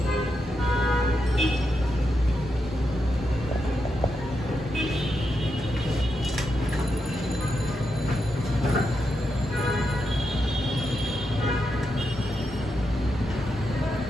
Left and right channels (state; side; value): normal; both; correlation 0.85